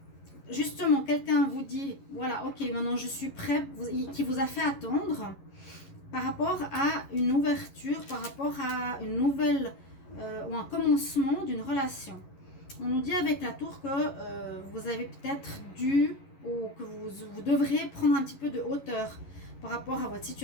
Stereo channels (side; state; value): right; late; 11 ms